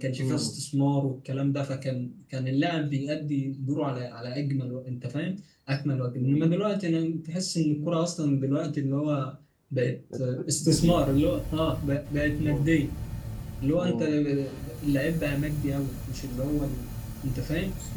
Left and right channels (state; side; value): identical; both; correlation 1.00